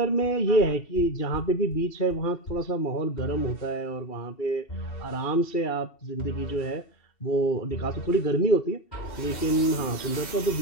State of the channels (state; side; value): late; right; 2.7 ms